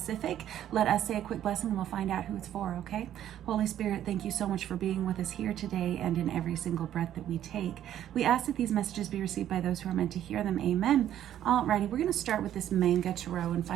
Let us say a quick blessing and we'll find out who it's for, okay? Holy Spirit, thank you so much for being with us here today and in every single breath that we take. We ask that these messages be received by those who are meant to hear them. Amen. Alrighty, we're going to start with this manga tarot and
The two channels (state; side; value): quieter; left; 11.3 dB